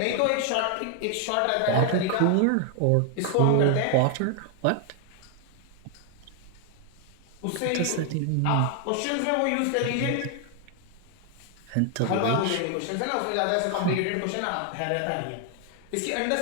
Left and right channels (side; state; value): both; different; correlation 0.00